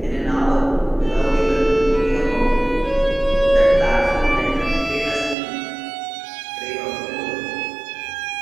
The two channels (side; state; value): left; drops out; at 5.4 s